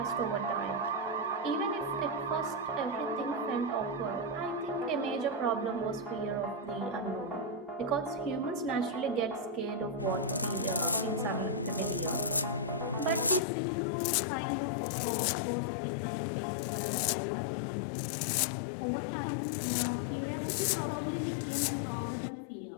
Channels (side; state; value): right; drops out; at 13.4 s